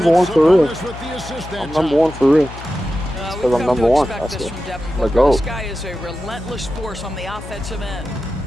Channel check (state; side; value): noise; left; hum, 13 dB below the sound